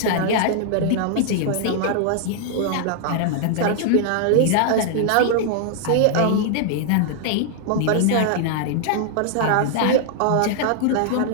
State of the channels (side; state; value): both; different; correlation 0.00